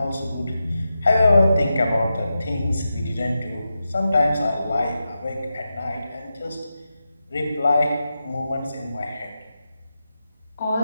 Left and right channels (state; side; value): inverted; both; correlation -0.90